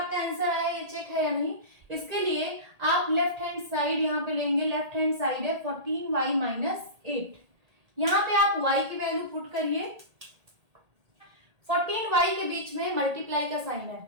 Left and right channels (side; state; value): left; late; 1.8 ms